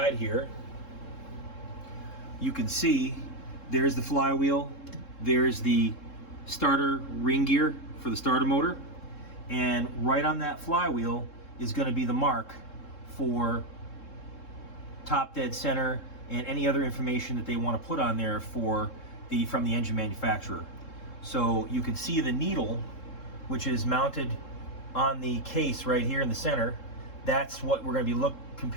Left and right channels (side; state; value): right; late; 3.7 ms